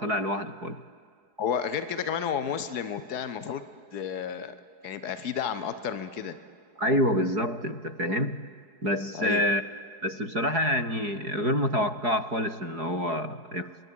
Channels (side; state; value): left; late; 4.7 ms